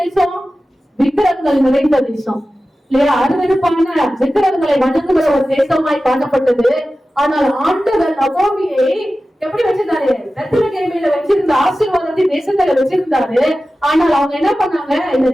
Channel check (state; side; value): normal; both; correlation 0.95